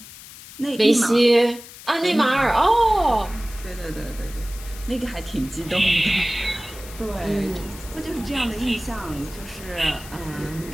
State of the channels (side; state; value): left; noise; hiss, 16 dB below the sound